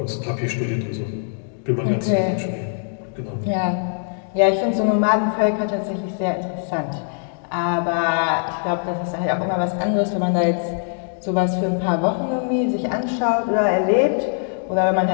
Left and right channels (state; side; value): silent; right; digital silence